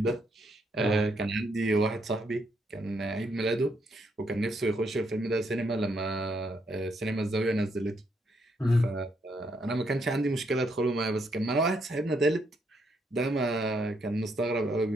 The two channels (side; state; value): both; normal; correlation 0.75